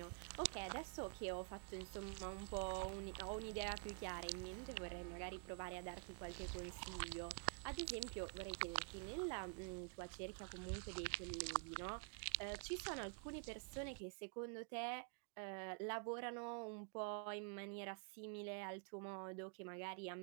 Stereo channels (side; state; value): left; quieter; 39.3 dB